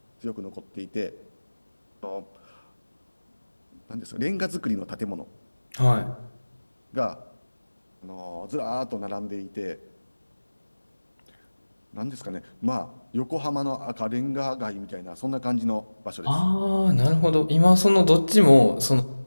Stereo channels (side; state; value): both; inverted; correlation -1.00